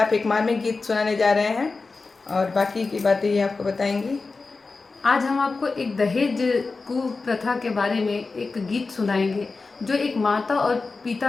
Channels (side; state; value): right; quieter; 4.0 dB